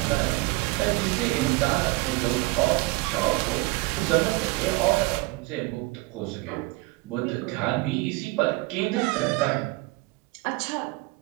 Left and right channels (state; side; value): quieter; left; 22.9 dB